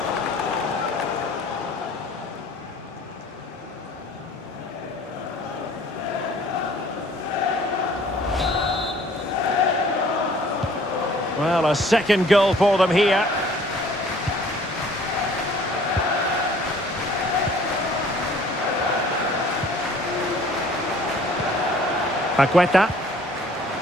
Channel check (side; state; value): both; normal; correlation 0.54